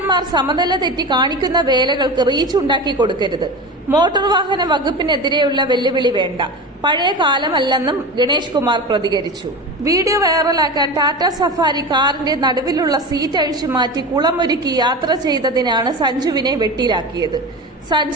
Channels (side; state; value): both; normal; correlation 0.28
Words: സമനില തെറ്റി കാണിക്കുന്ന വേലകൾക്ക് റീച്ച് ഉണ്ടാക്കി കൊടുക്കരുത്. മോട്ടോർ വാഹന വകുപ്പിനെതിരെയുള്ള വെല്ലുവിളി വേണ്ട, പഴയ കാലമല്ലെന്നും ഗണേഷ് കുമാർ പ്രതികരിച്ചു. വീഡിയോ വൈറലാക്കാൻ ടാറ്റ സഫാരി കാറിന്റെ നടുവിലുള്ള സീറ്റ് അഴിച്ചു മാറ്റി കുളമൊരുക്കി യാത്ര ചെയ്തതിനാണ് സഞ്ജുവിനെ വെട്ടിലാക്കിയത്.